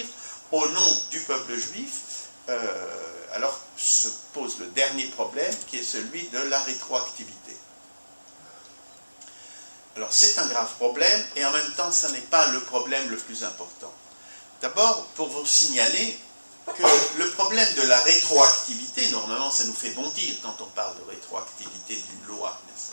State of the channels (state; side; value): inverted; both; correlation -1.00